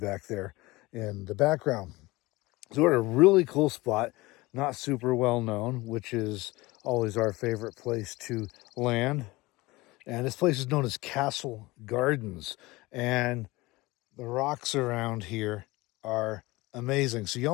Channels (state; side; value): quieter; right; 21.2 dB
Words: there in the background. So we're at a really cool spot, not super well known, which is always our favorite place to land. And this place is known as Castle Gardens. And the rocks around here are amazing. So you